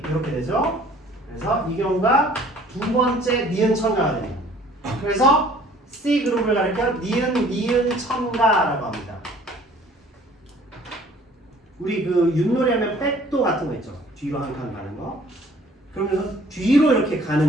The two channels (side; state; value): both; normal; correlation 0.54